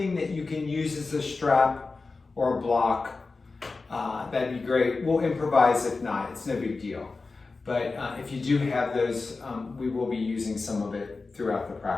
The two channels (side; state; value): right; quieter; 3.9 dB